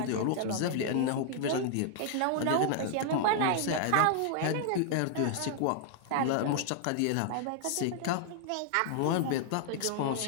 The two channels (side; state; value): both; different; correlation 0.00